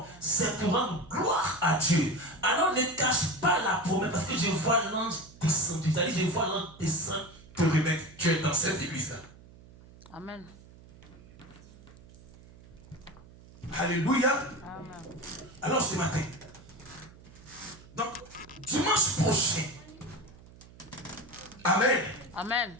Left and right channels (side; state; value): right; noise; hum, 21 dB below the sound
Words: c'est pour rendre gloire à Dieu. Alors ne cache pas la promesse, parce que je vois l'ange descendre. C'est-à-dire, je vois l'ange descendre pour remettre Dieu dans cette église-là. Amen. Alléluia. Amen. Alors ce matin, donc dimanche prochain, amen. Amen.